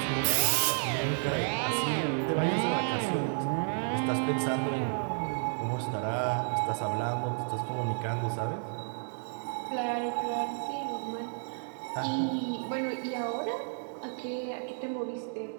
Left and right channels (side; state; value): left; silent; digital silence